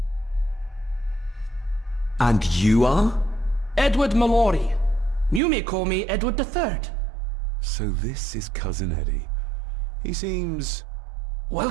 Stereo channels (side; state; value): left; drops out; at 5.4 s